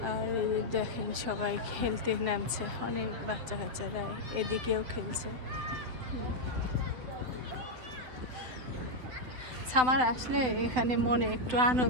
আর এই দেখেন সবাই খেলতে নামছে, অনেক বাচ্চা কাচ্চারা এদিকেও খেলছে। সামার আসলে এখানে মনে একটু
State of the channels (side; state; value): left; late; 8.2 ms